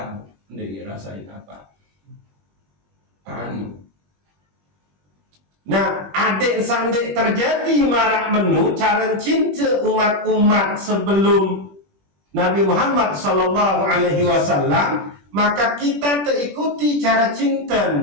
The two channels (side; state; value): left; late; 21 ms